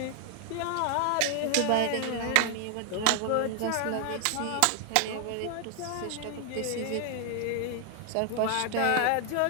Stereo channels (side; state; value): both; different; correlation 0.00